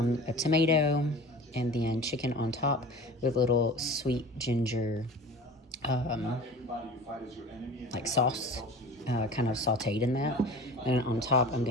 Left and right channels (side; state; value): both; normal; correlation 0.38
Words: tomato, and then chicken on top with little sweet ginger like sauce, kind of sauteed in that. And on top I'm